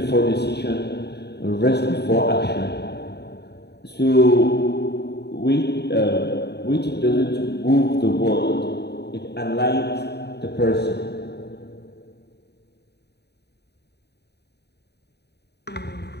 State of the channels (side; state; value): right; late; 0.48 ms